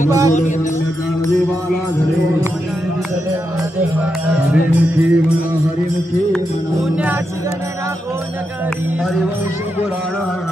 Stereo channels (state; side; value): normal; both; correlation 0.85